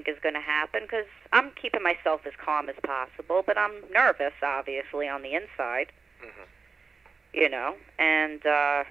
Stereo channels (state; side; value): quieter; left; 4.8 dB